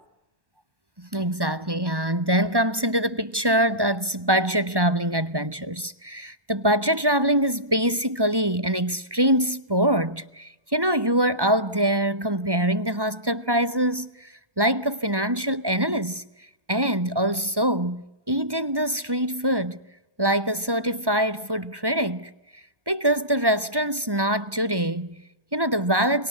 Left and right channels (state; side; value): late; left; 1.1 ms